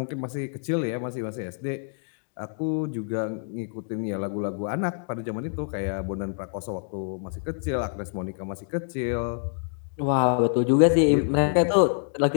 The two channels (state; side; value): silent; right; digital silence